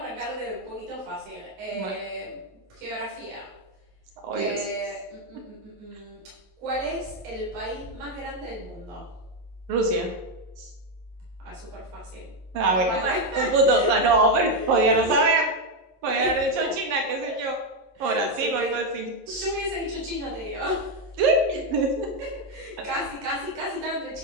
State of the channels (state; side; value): late; left; 11 ms